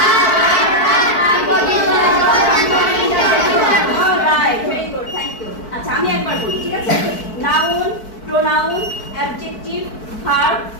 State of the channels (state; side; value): late; right; 4.6 ms